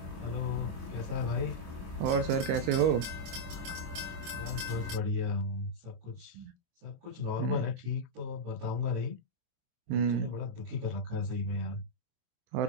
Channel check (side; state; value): left; late; 24 ms